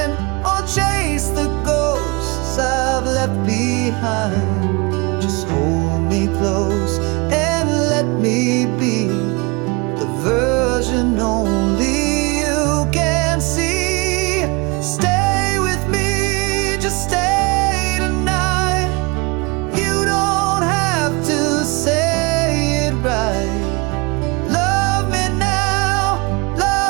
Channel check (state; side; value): quieter; left; 27.8 dB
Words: or chase the ghosts I've left behind. Just hold me close and let me be the version only you can see. Stay with me, just stay tonight. You don't have to say it right. Love me now,